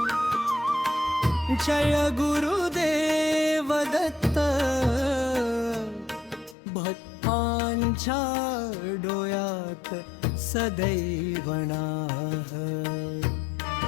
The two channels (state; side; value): drops out; right; at 6.6 s